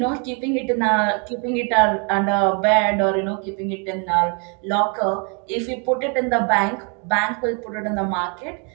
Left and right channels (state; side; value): quieter; left; 36.8 dB